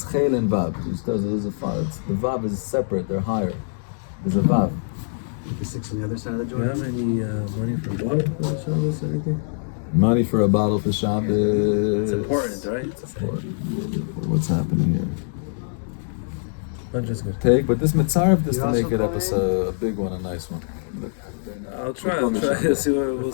Chel and Vav. The Vav is separate, they're higher. There's a Vav. The 6 on the other side of the Do you joint. have any money for water for the Shabbos or anything? Money for a bottle for Shabbos. It's important, right? It's important. What's happening here? Bunch is good. Take, but this Mitzaref just You to also make it up call as in? a big one, a nice one. I'll try. We'll see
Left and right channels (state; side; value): silent; right; digital silence